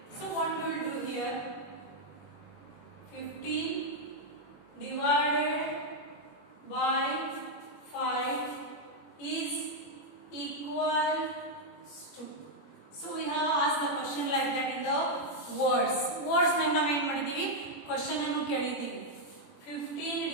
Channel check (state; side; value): late; right; 21 ms